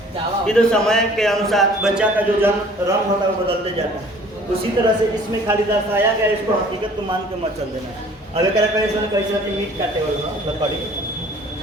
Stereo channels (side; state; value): both; normal; correlation 0.52